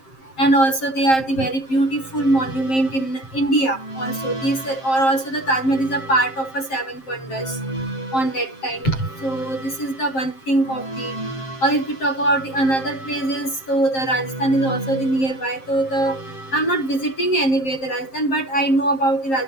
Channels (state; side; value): late; right; 7.6 ms